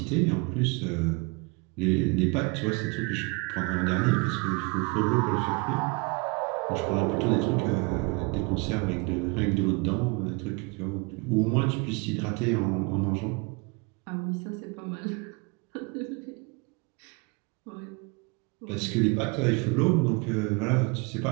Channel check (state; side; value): quieter; left; 29.3 dB